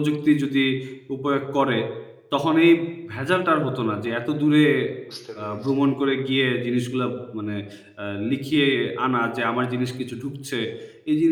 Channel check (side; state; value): both; identical; correlation 1.00